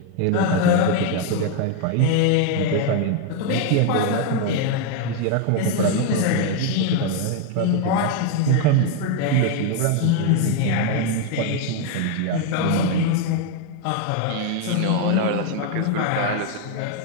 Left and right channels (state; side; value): different; both; correlation 0.01